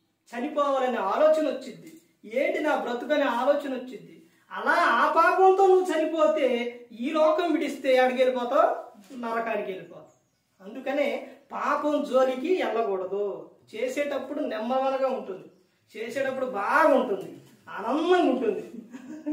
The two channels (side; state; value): both; identical; correlation 1.00